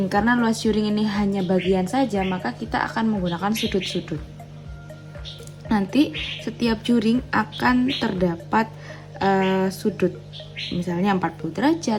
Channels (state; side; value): identical; both; correlation 1.00